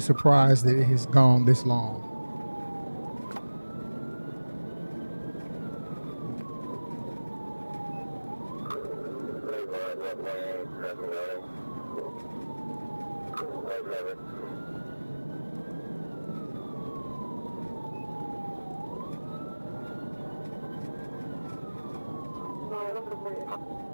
that it has gone this long.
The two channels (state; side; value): inverted; both; correlation -1.00